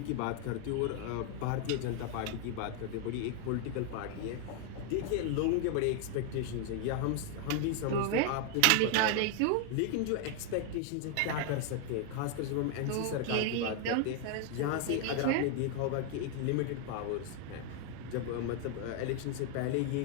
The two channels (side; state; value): both; different; correlation 0.01